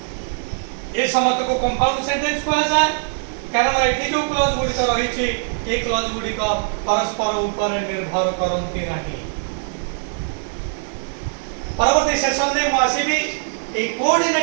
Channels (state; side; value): silent; left; digital silence